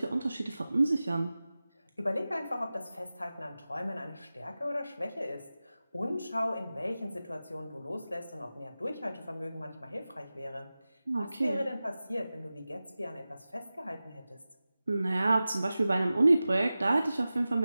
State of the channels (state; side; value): inverted; both; correlation -0.95